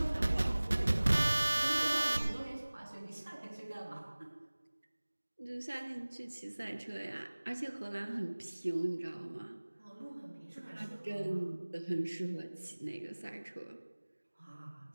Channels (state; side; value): inverted; both; correlation -1.00